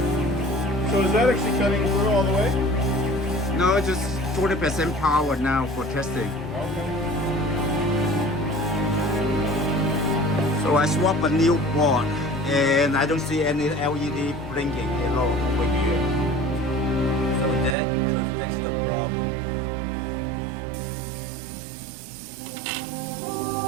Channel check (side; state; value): left; drops out; at 17.8 s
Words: So is that actually cutting through all the way? No, just 40% power now for testing. Okay. So I swap a new board and I don't see any LED blinking at all over here. So that could fix the problem.